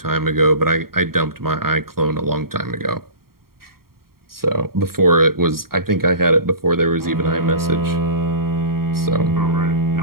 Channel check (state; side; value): late; left; 0.93 ms